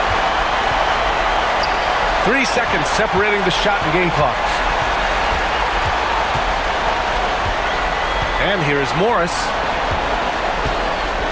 3 seconds separating the shot and game clocks. And here is Morris.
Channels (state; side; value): identical; both; correlation 1.00